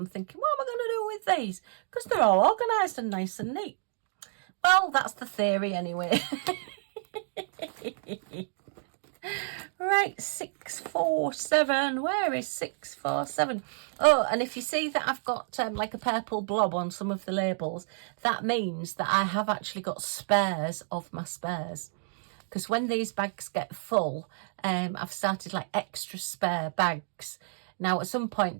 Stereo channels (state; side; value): silent; left; digital silence